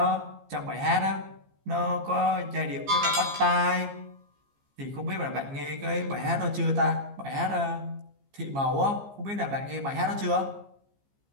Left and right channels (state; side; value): late; left; 15 ms